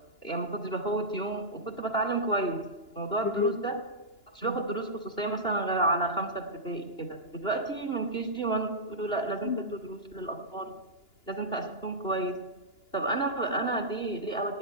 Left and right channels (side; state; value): right; late; 2.9 ms